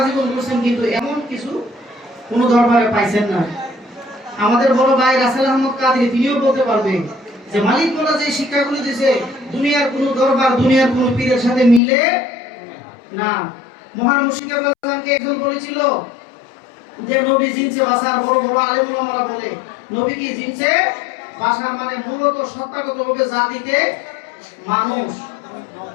জীবন করছেন, কিন্তু এমন কিছু কোনো দরবারে পাইছেন না। আমাদের বড় ভাই রাসেল আহমদ কাদরি তিনিও বলতে পারবেন যে মালিক মোল্লা যে শিক্ষাগুলো দিয়েছে দুনিয়ার কোনো দরবার দুনিয়ার কোনো পীরের সাথে মিলে না। মহান মুর্শিদ কেবলাকে একজন বলেছিল যে নবী জিনসে বাসার বড় বড় আলেম ওলামারা বলে নবী কি জিনসে বাসা, মানে মূলত সত্তাগতভাবে জাতিতে মানুষ।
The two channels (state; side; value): drops out; right; at 11.8 s